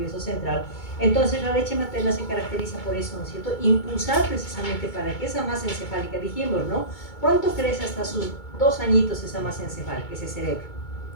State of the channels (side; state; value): right; late; 2.2 ms